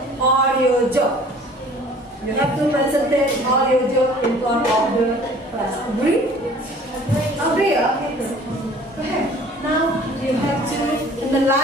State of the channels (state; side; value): normal; both; correlation 0.50